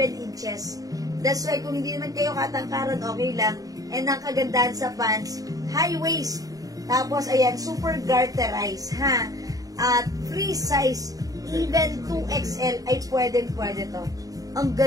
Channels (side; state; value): left; late; 0.17 ms